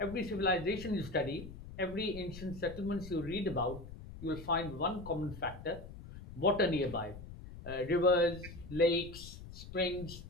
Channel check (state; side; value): noise; left; rumble, 13 dB below the sound